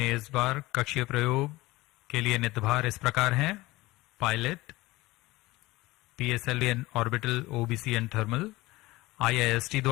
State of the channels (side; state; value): right; quieter; 19.8 dB